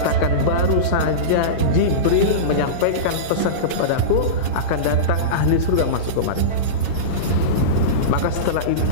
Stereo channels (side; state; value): right; late; 8.7 ms